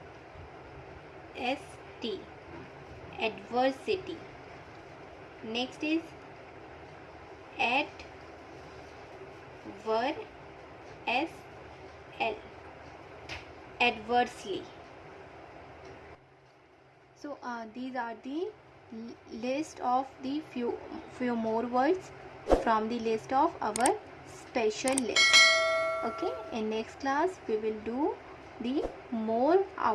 ST, adversity. Next is at ver SL, adversely. So these are the list of the few more words from the list of our special list. Okay, in next class we will do the more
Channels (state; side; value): identical; both; correlation 1.00